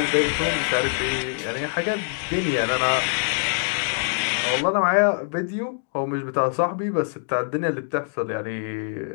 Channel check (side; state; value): right; silent; digital silence